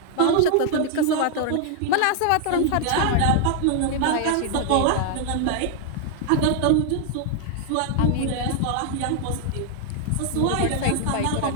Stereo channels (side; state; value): both; different; correlation 0.00